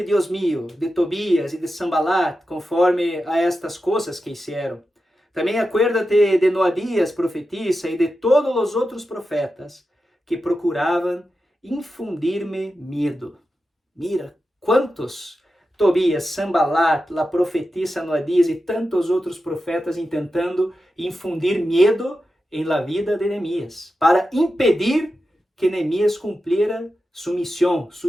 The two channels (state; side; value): normal; both; correlation 0.91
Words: Dios mío, de Tobías y de Sanballat, conforme a estas cosas que hicieron. También acuérdate de Noadías, profetisa, y de todos los otros profetas que procuraban infundirme miedo. Mira, cuántos: Tobías, Sanballat, la profetisa Noadías y tantos otros profetas intentando infundir miedo en la vida de Nehemías, para impedir que Nehemías cumpliera su misión, su